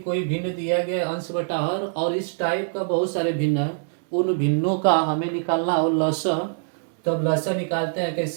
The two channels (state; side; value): silent; left; digital silence